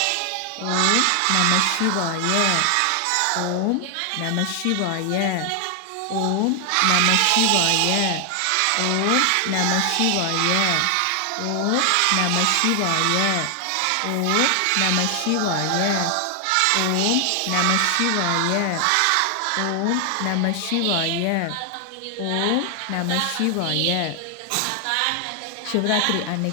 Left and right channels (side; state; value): both; different; correlation 0.00